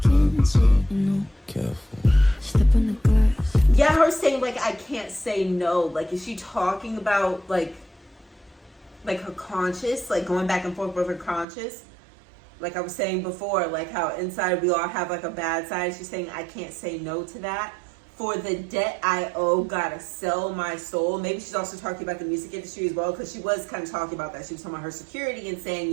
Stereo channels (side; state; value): left; drops out; at 11.5 s